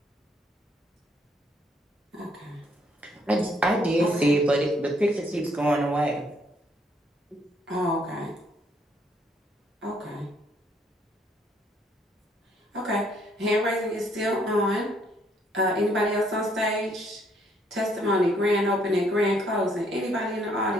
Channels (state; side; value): normal; both; correlation 0.68